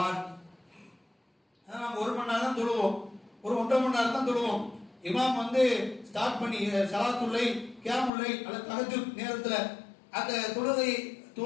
நம்ம 1 மணி நேரம் தான் தொழுவோம், ஒரு 1.5 மணி நேரம் தான் தொழுவோம். இமாம் வந்து ஸ்டார்ட் பண்ணி ஸலாத்துல்லை, கியாமுல்லை அல்லது தஹஜ்ஜுத் நேரத்துல அந்த தொழுகை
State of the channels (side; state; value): right; drops out; at 8.1 s